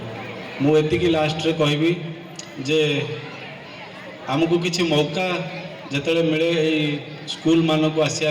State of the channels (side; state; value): both; identical; correlation 1.00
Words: मु एतिकी लास्ट रे कहबी जे आमको किसी मौका जतले मिले एई स्कूल मान को